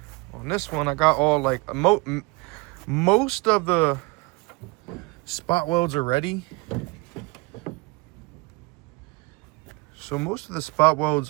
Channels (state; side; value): quieter; left; 25.4 dB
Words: on this one, I got all most of the spot welds are ready. So most of the spot welds